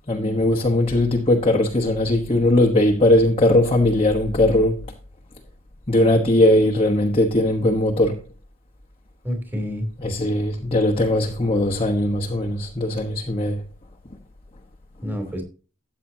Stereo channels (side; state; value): both; normal; correlation 0.56